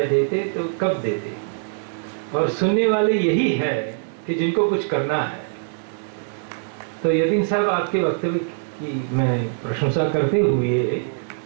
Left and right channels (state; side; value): silent; left; digital silence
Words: देते तो कब देते, और सुनने वाले यही है कि जिनको कुछ करना है। तो यतीन साहब, आपके वक्तव्य की मैं प्रशंसा करते हुए